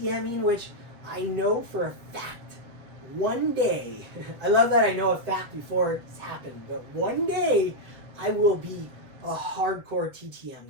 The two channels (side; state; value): left; late; 7.7 ms